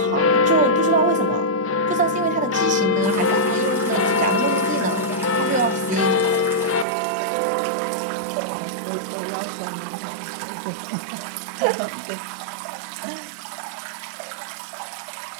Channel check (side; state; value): left; drops out; at 6.9 s